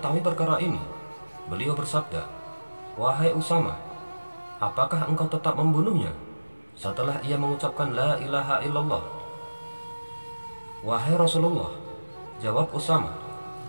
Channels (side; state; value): both; inverted; correlation -1.00